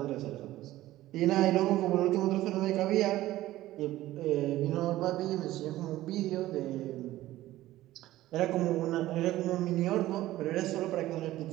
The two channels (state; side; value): quieter; left; 15.6 dB